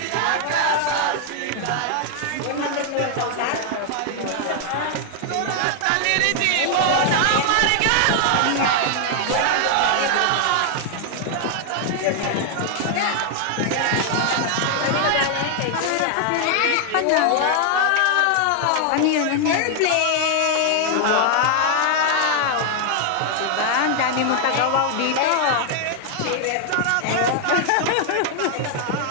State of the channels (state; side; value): different; both; correlation 0.00